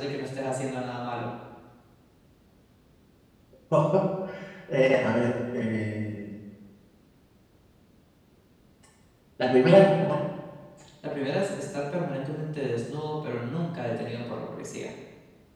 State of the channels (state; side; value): identical; both; correlation 1.00